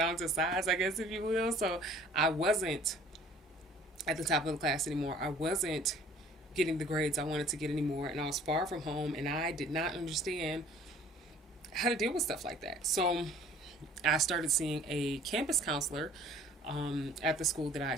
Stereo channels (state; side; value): normal; both; correlation 0.52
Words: to size, I guess, if you will. So I wasn't at the top of the class anymore. I wasn't getting the grades I wanted to get anymore, and I was far from home, and I did not understand how to deal with stuff like that. So I started seeing a campus counselor at the school that I